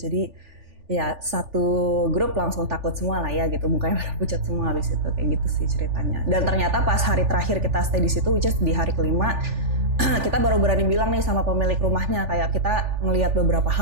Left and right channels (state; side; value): late; left; 3.4 ms